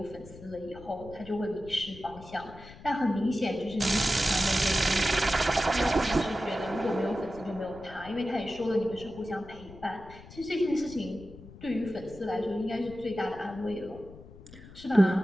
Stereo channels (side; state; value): left; noise; rumble, 18 dB below the sound